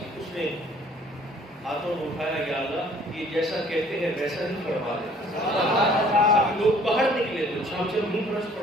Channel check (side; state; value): both; normal; correlation 0.56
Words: اس نے ہاتھوں کو اٹھایا، یا اللہ یہ جیسا کہتے ہیں ویسا ہی فرما دے۔ چھم چھم نہیں برس